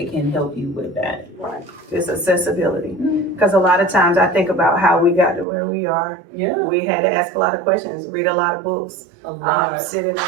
can help you with that. Right. Just accessibility. Because a lot of times I think about how we got to where we are. Yeah. We had to ask a lot of questions, read a lot of books, A lot. sit in a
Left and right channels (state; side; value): drops out; left; at 5.5 s